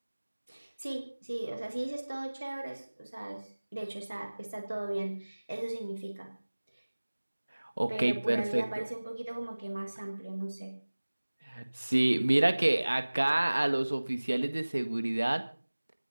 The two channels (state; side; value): inverted; both; correlation -1.00